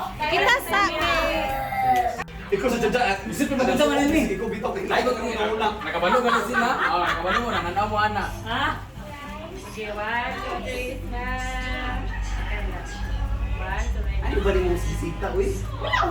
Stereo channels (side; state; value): both; identical; correlation 1.00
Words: Kita sa Ikaw sa dada. Bisit mo maganda man ni. Ikaw bitaw kay layo kami na ulang. Nakabalo ka na sila. Nakabalo mo nanganaw mo ana. Ha? Okay, 1, 2, 3 na. Ano ba rin mo bisita, uy? Wow,